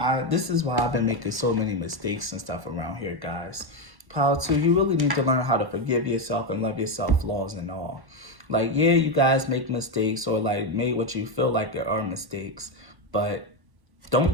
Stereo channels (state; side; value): late; left; 1.1 ms